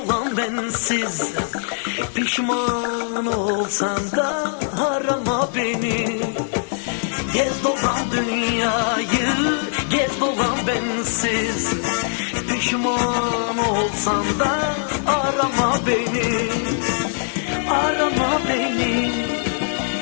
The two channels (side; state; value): right; silent; 65 dB below the other